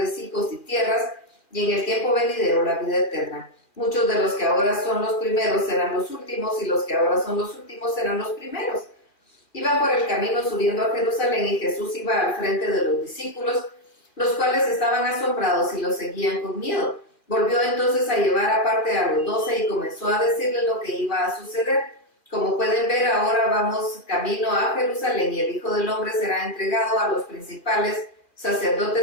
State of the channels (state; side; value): late; right; 2.4 ms